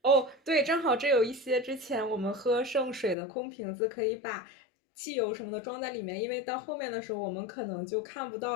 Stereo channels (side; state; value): right; drops out; at 3.2 s